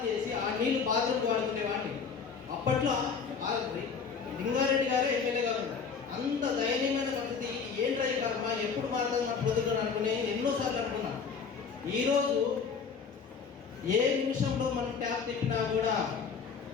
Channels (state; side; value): quieter; right; 5.8 dB